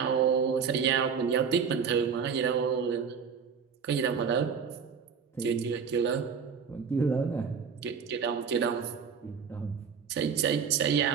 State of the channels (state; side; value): quieter; left; 6.5 dB